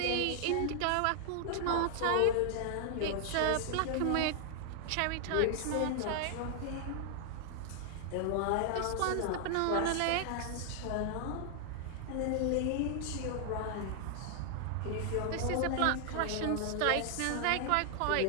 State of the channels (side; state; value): both; different; correlation 0.00